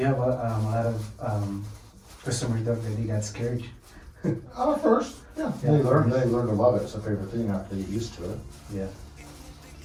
a lot of customers that really got scared. First, yeah. They learn to love it. It's a favorite thing after they get used to it. Yeah.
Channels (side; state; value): both; identical; correlation 1.00